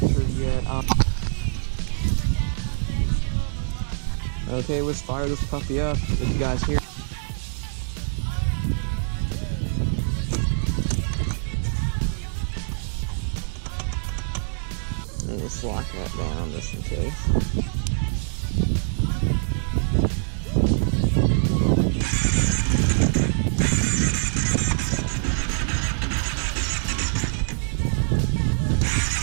yet. Okay, let's fire this puppy up. Did you guys hear? Let's lock that down just in case.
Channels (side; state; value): left; silent; digital silence